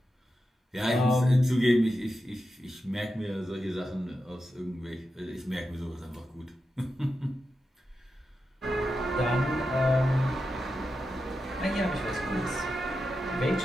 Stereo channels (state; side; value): normal; both; correlation 0.89